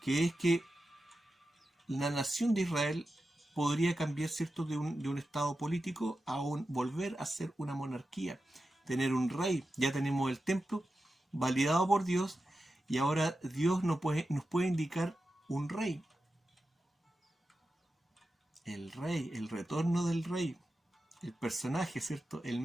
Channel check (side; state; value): both; normal; correlation 0.91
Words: Que es que la nación de Israel podría cambiar, ¿cierto?, de un estado político a volver a ser una monarquía, tener un rey. Ya tenemos el templo validado por Dios y ahora Dios nos puede indicar un rey. El rey, el retorno del rey, el personaje, ¿cierto?, el